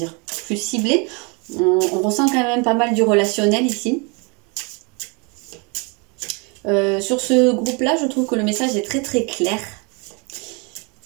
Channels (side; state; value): left; quieter; 32.0 dB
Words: plus ciblée. On ressent quand même pas mal du relationnel ici. Sur ce groupe-là, je trouve que le message est très très clair.